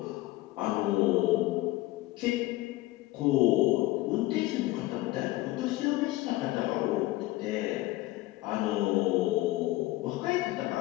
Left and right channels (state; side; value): quieter; right; 18.0 dB